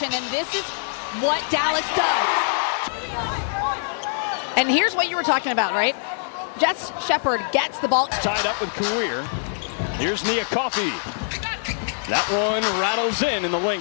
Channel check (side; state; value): right; silent; digital silence